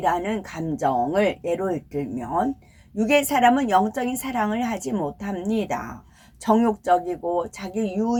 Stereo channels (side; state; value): both; identical; correlation 1.00